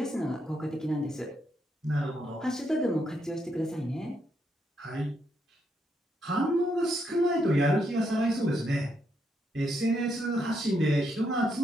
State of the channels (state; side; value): normal; both; correlation 0.78